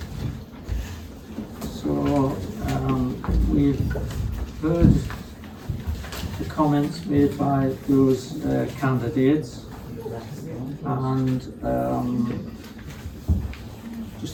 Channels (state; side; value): identical; both; correlation 1.00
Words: So we've heard comments made by those candidates, and